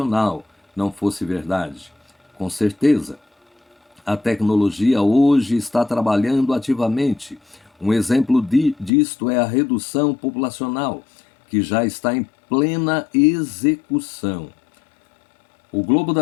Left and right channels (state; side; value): drops out; right; at 8.9 s